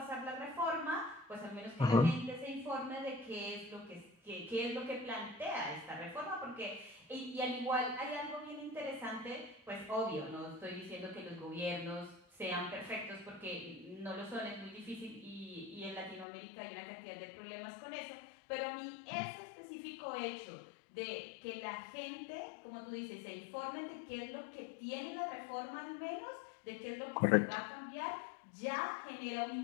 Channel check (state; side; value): drops out; right; at 16.2 s